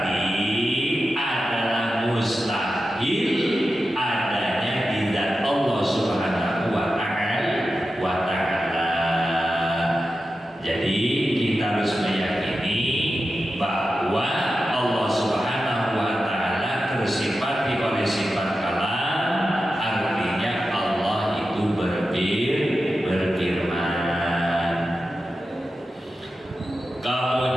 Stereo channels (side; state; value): both; normal; correlation 0.91